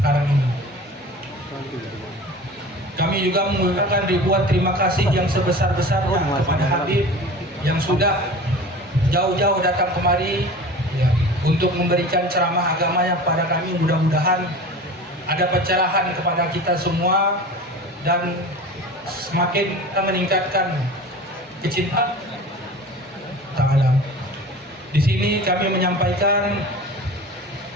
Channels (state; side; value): normal; both; correlation 0.37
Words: ini. Kami juga mengucapkan ribuan terima kasih yang sebesar-besarnya kepada Habib yang sudah jauh-jauh datang kemari ya, untuk memberikan ceramah agamanya kepada kami. Mudah-mudahan ada pencerahan kepada kita semua dan semakin kita meningkatkan kecintaan Ta'ala. Di sini kami menyampaikan